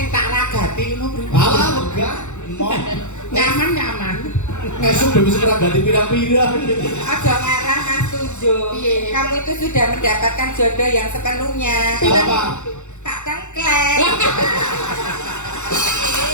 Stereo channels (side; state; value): right; late; 0.84 ms